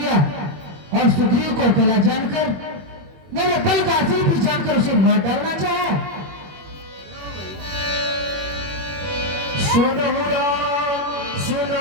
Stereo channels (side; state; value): left; late; 21 ms